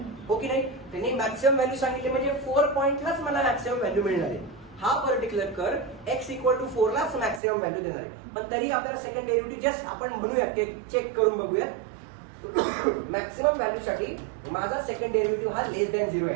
हो की नाही? त्यांनी मॅक्सिमम व्हॅल्यू सांगितली म्हणजे 4 पॉइंटलाच मला मॅक्सिमम व्हॅल्यू मिळणार आहे. हा पर्टिक्युलर कर x इक्वल टू 4 लाच मॅक्सिमम व्हॅल्यू देणार आहे. पण तरी आपल्याला सेकंड डेरिव्हेटिव्ह जस्ट आपण म्हणूयात की चेक करून बघूयात. मॅक्सिमम व्हॅल्यू साठी माझा सेकंड डेरिव्हेटिव्ह हा लेस दॅन 0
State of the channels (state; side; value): drops out; left; at 7.4 s